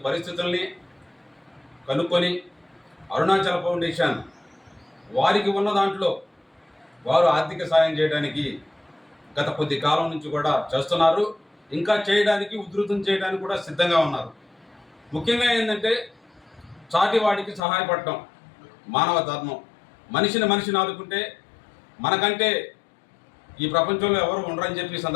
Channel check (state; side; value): drops out; right; at 17.6 s